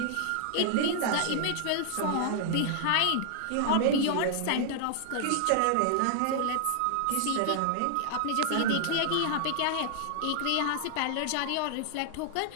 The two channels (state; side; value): different; both; correlation 0.00